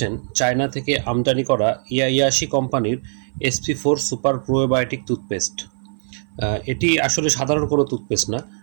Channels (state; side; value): silent; left; 57 dB below the other